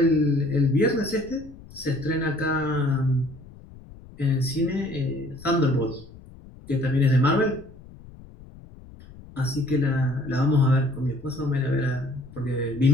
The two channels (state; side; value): noise; left; rumble, 20 dB below the sound